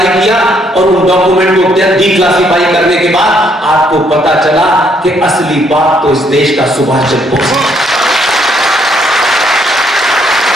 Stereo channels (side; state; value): both; normal; correlation 0.70